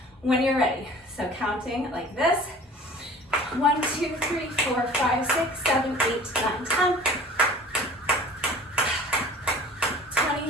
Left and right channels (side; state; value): both; normal; correlation 0.45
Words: when you're ready. So counting like this: 1, 2, 3, 4, 5, 6, 7, 8, 9, 10,